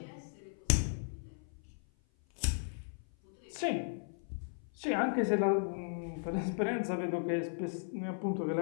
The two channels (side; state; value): right; silent; 54 dB below the other